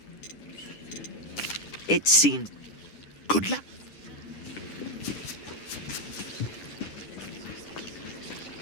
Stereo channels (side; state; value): right; late; 10 ms